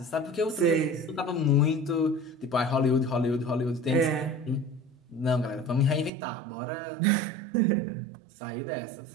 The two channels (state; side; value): drops out; left; at 6.1 s